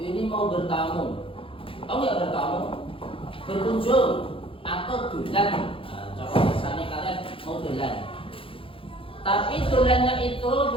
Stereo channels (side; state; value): right; late; 0.26 ms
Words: ini mau bertamu, tahu nggak bertamu? Berkunjung atau dolan. Contoh misalnya kalian mau dolan, tapi dolannya itu